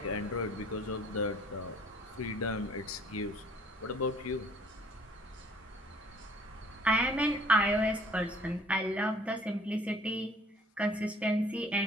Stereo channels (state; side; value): normal; both; correlation 0.56